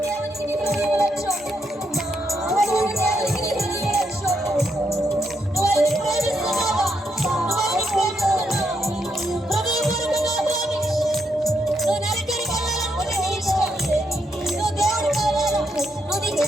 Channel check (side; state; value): both; normal; correlation 0.79